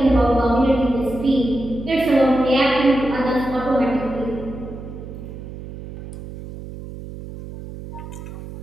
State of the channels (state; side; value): noise; right; hum, 12 dB below the sound